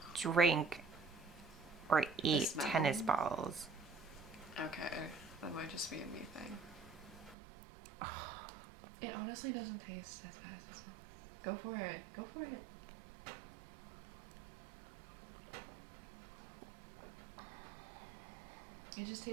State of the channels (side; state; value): left; drops out; at 7.4 s